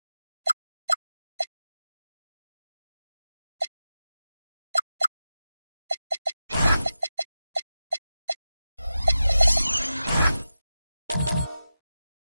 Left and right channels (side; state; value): both; inverted; correlation -0.93